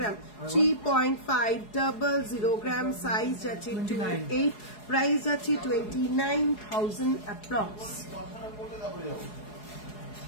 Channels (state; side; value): late; right; 4.8 ms